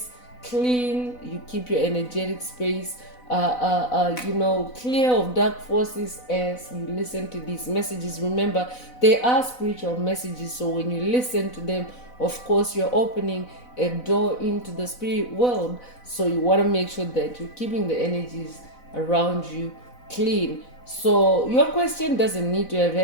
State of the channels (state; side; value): late; right; 4.0 ms